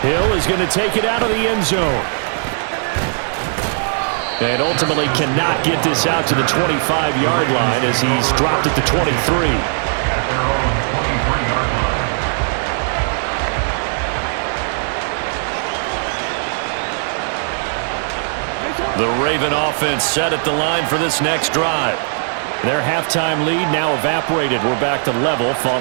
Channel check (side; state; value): left; silent; digital silence